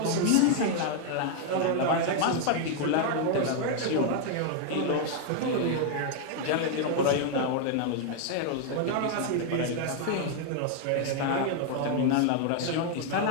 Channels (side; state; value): both; different; correlation 0.00